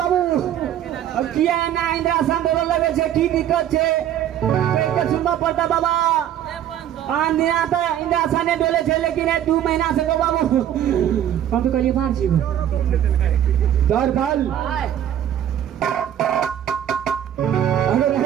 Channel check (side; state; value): left; quieter; 10.7 dB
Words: अब किया ना इंद्रासन डोला लगे छे की दिक्कत छे के सुनबा पड़ता बाबा आन दिन आता इंद्रासन ने डोले छे लेकिन 2 महीना से गो बाबू हम तो कलिए मार छी द्वारपाल अगर